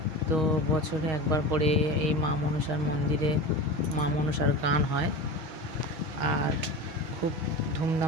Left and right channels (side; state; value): left; late; 6.4 ms